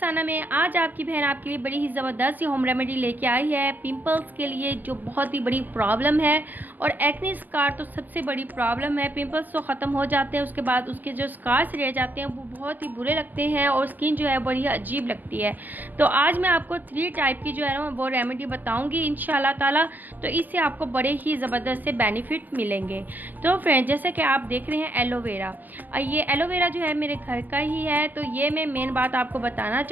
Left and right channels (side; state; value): left; late; 0.085 ms